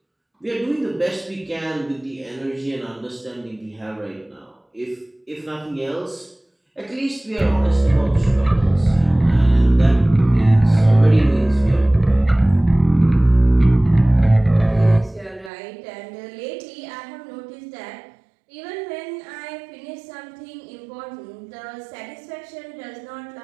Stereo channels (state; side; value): drops out; left; at 15.5 s